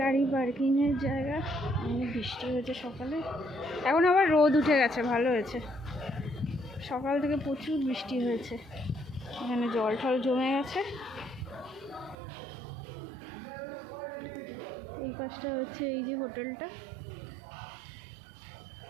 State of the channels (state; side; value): drops out; left; at 12.2 s